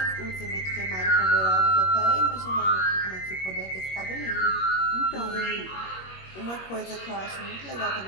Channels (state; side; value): late; right; 21 ms